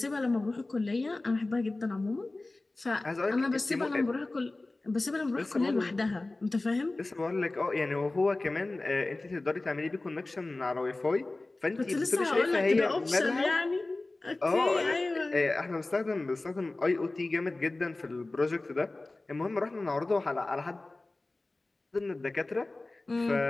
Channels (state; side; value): quieter; right; 3.0 dB